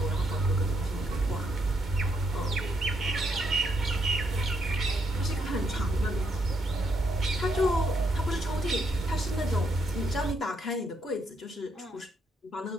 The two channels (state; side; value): normal; both; correlation 0.76